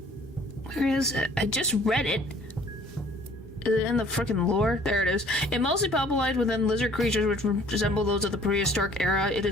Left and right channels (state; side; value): normal; both; correlation 0.55